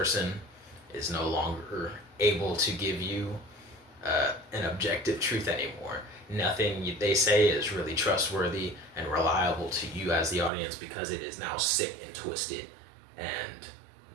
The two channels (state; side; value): drops out; left; at 10.5 s